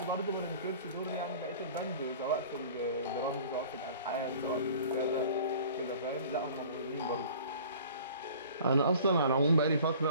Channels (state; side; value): inverted; both; correlation -0.46